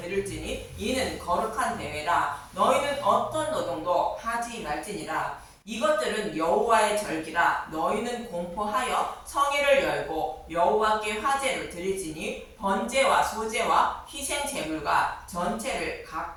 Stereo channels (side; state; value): both; identical; correlation 1.00